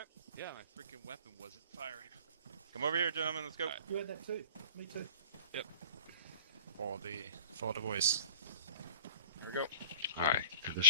Yeah, my freaking weapon wasn't firing. Come over here, gentlemen, let's go. You had that too. Me too. Yep. For the voice. There we go. Alright,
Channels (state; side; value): inverted; both; correlation -0.46